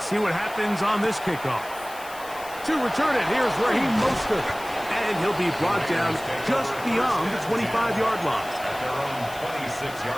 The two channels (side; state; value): left; noise; hiss, 17 dB below the sound